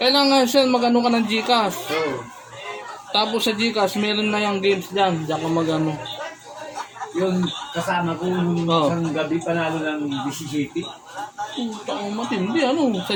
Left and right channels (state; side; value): identical; both; correlation 1.00